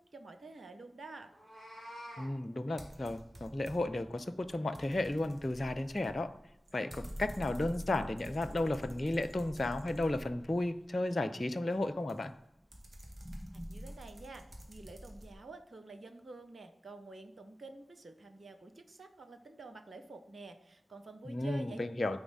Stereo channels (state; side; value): normal; both; correlation 0.94